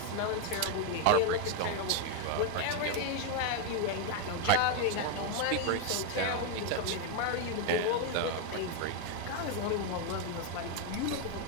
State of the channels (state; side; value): different; both; correlation 0.01